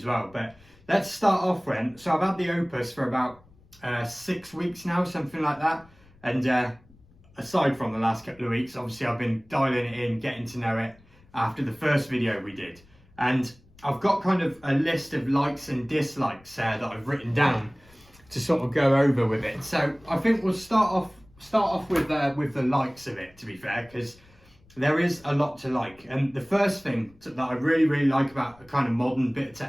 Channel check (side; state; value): left; noise; rumble, 28 dB below the sound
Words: well. But let's start off then. So I've had the Opus for about 6 weeks now, something like that, and aside from the last couple of weeks, obviously I've been dialing it in, getting to know it after the first video we did. And I've got kind of a list of likes and dislikes that I've written down to sort of go over with it. So I think we'll start off with the likes of it, to be fair, because there is a lot to like. And the first thing that I really like about a kind of modern bit of